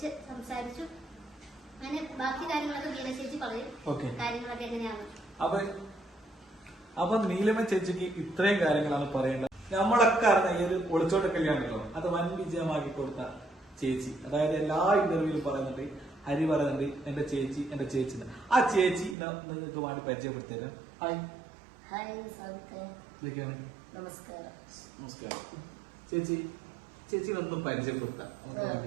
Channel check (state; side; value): drops out; left; at 19.2 s